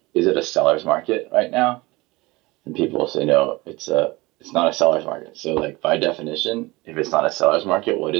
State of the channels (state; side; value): quieter; left; 22.1 dB